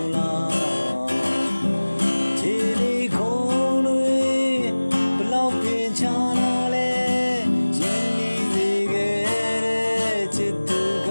းလားခြေလေးခုံးတွေဘလောက်ပင်ချလာလဲရင်းနှီးစေခဲ့တဲ့ချစ်သူက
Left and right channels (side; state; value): both; inverted; correlation -1.00